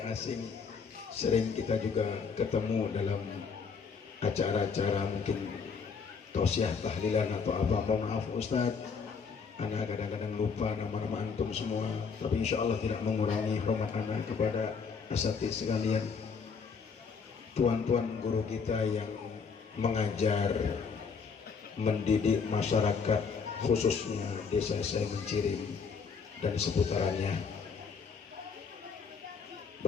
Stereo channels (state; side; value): quieter; right; 5.6 dB